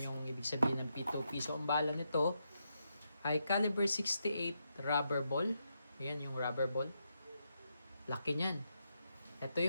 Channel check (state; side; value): inverted; both; correlation -0.83